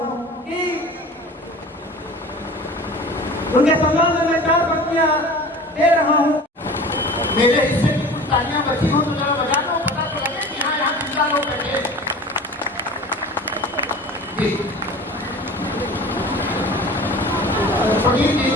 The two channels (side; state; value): both; normal; correlation 0.39